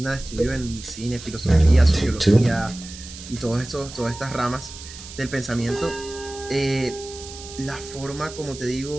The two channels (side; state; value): right; noise; hiss, 14 dB below the sound